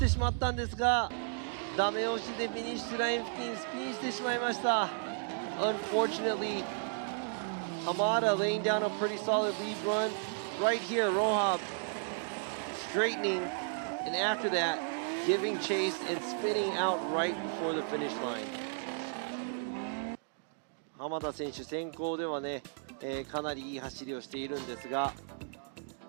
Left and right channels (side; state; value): left; silent; digital silence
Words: しまったんですが、ダメ押しでフィニッシュライン付近スピンしてしまいました。 Unfortunately, Hamada laying down a pretty solid lead run. Right here, Rohab straightening, and after that, giving chase and spinning out right before the finish line. 浜田選手先行ではね、かなりいい走りをしているんですが、